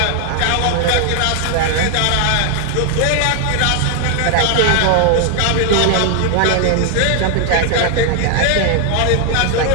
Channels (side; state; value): both; different; correlation 0.00